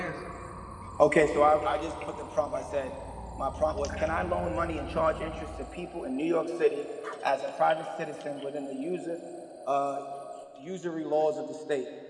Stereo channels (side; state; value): both; identical; correlation 1.00